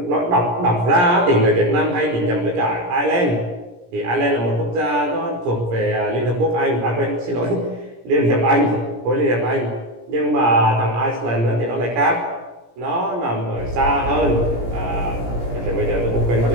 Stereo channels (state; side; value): late; left; 17 ms